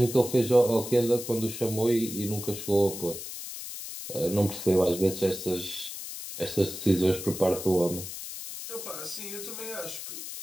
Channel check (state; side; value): noise; left; hiss, 9 dB below the sound